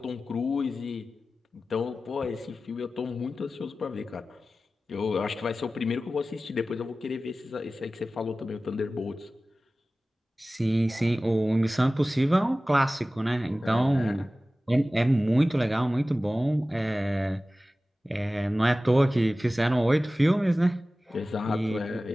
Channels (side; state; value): both; normal; correlation 0.96